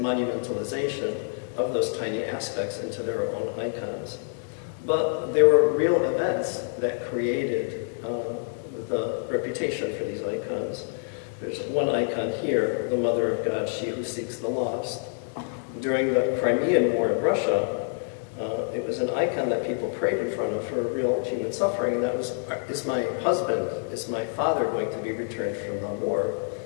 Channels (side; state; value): right; silent; digital silence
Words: of those tiny aspects into their own icons. But there were real events that created the reputation for these icons. There's one icon here, the Mother of God, She Who Seeks the Lost. During the Crimean War in Russia, it was an icon that people prayed in front of for real human suffering, and that was, is my husband, is my father going to be returned from the war?